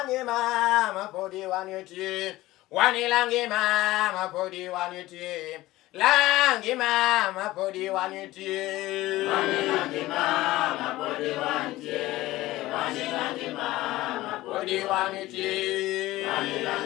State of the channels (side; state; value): right; quieter; 17.4 dB